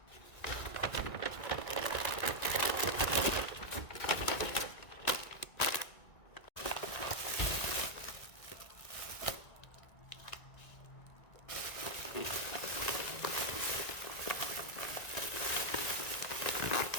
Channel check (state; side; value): late; right; 1.9 ms